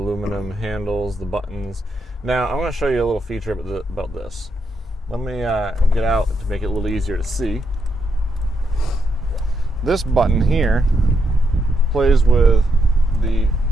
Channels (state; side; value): normal; both; correlation 0.80